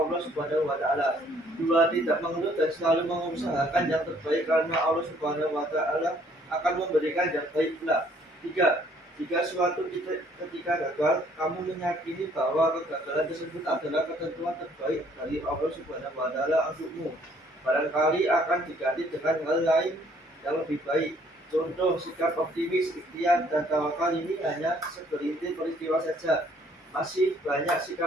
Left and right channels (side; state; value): both; normal; correlation 0.62